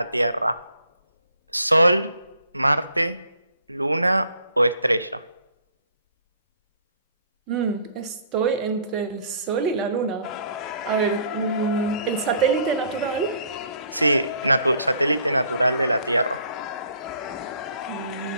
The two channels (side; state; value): both; inverted; correlation -0.59